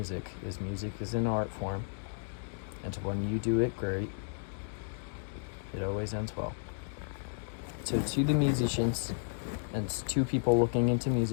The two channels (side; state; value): right; silent; digital silence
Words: Music is an art form, and when you do it great, it always ends well. So to the musicians and to people looking into